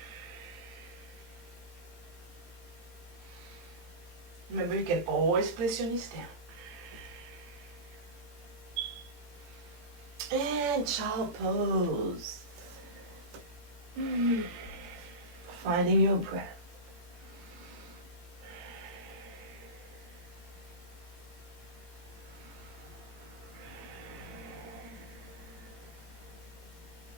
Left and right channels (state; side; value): late; left; 17 ms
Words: Remember, you can always place your knees down. And child pose. Finding your breath.